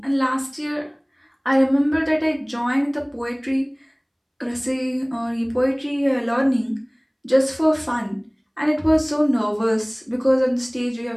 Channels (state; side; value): identical; both; correlation 1.00